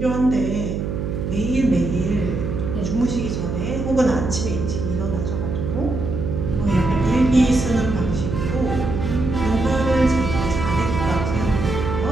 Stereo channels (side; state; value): right; noise; hum, 3 dB below the sound